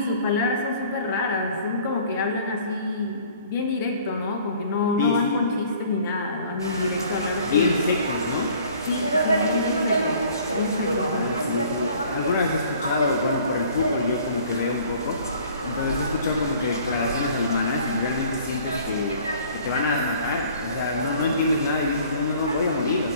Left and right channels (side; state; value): both; inverted; correlation -0.53